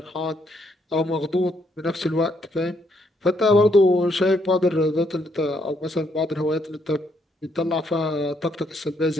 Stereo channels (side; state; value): both; normal; correlation 0.73